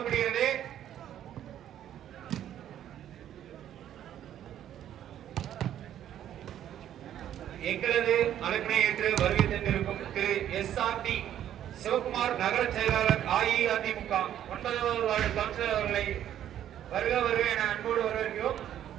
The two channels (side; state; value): left; quieter; 11.0 dB